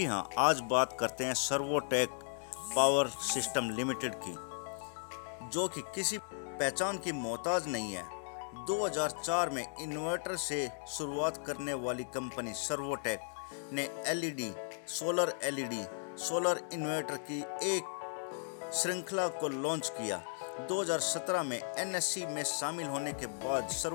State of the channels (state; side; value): silent; right; digital silence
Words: हां, आज बात करते हैं सर्वोटेक पावर सिस्टम लिमिटेड की, जो कि किसी पहचान की मोहताज नहीं है। 2004 में इन्वर्टर से शुरुआत करने वाली कंपनी सर्वोटेक ने सोलर इन्वर्टर की एक श्रृंखला को लॉन्च किया। 2017 में NSE में शामिल होने के बाद